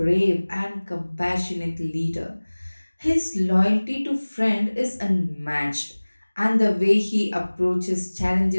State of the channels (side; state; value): both; inverted; correlation -1.00